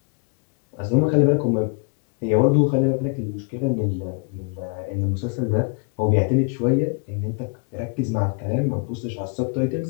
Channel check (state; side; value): quieter; right; 36.9 dB